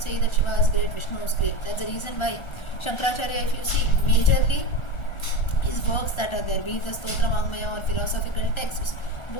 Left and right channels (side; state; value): right; late; 1.4 ms